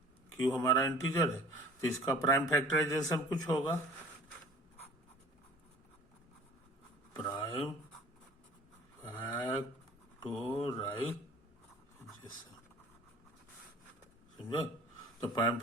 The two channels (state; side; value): normal; both; correlation 0.47